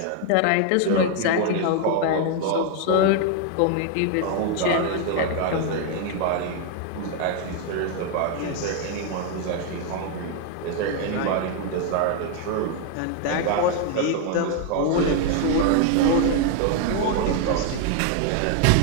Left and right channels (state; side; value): different; both; correlation 0.00